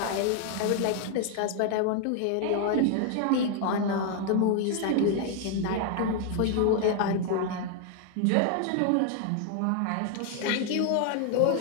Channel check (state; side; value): different; both; correlation 0.00